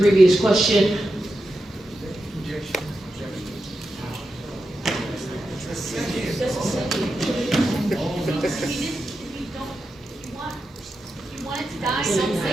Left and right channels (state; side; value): normal; both; correlation 0.89